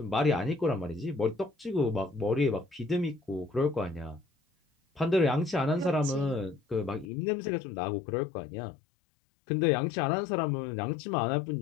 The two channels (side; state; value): right; drops out; at 7.1 s